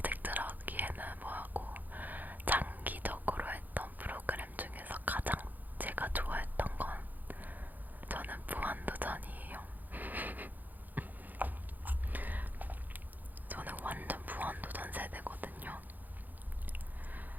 하기에는 뭐하고 장기적으로 했던 프로그램 중에서 가장 제가 좋아했던 건 저는 무한도전이에요. 저는 완전 무한도전 세대거든요.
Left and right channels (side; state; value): left; late; 0.084 ms